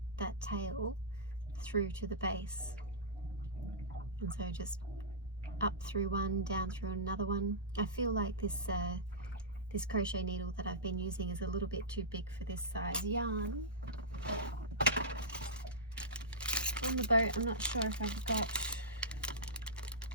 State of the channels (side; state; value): both; normal; correlation -0.16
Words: that tail through to the base. And so just up through one, down through another one. I feel like this crochet needle that I've been using is a little bit too big for this size yarn. On the boat, I'm not sure if I've got